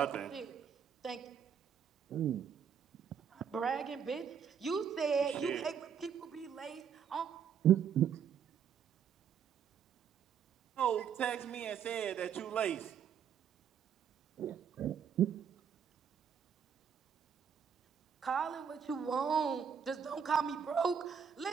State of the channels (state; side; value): quieter; left; 7.6 dB